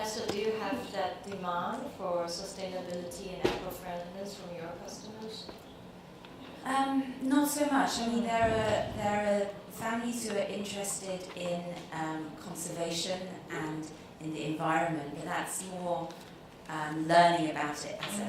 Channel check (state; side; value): identical; both; correlation 1.00